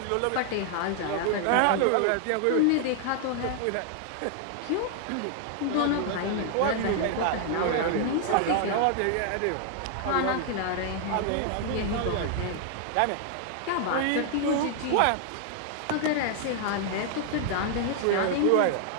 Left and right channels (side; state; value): both; different; correlation 0.00